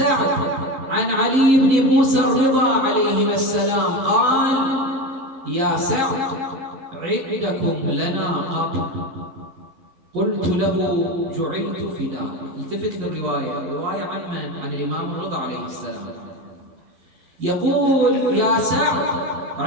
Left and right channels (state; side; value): late; left; 11 ms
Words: عن علي بن موسى الرضا عليهما السلام قال: يا سعد، عندكم لنا قبر. قلت له: جعلت فداك. التفت للرواية، الرواية عن من؟ عن الإمام الرضا عليه السلام. يقول: يا سعد،